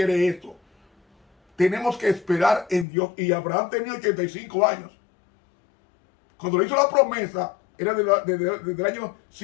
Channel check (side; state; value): right; drops out; at 2.9 s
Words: eso. Tenemos que esperar en Dios. Y Abraham tenía 85 años. Cuando le hizo la promesa, era desde el año